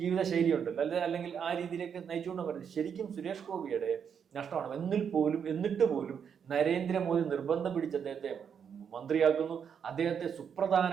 ജീവിത ശൈലി ഉണ്ടല്ലോ, അല്ലെങ്കിൽ ആ രീതിയിലേക്ക് നയിച്ചുകൊണ്ട് പറയുന്നത് ശരിക്കും സുരേഷ് ഗോപിയുടെ നഷ്ടമാണ്. എന്നിട്ട് പോലും നരേന്ദ്രമോദി നിർബന്ധം പിടിച്ച് അദ്ദേഹത്തെ മന്ത്രിയാക്കുന്നു. അദ്ദേഹത്തെ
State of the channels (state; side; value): quieter; left; 7.5 dB